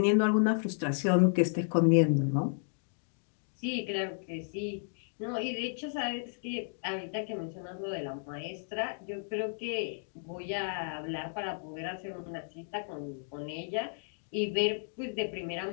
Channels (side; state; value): right; silent; digital silence